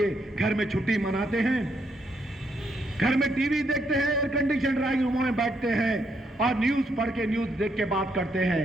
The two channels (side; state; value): both; normal; correlation 0.76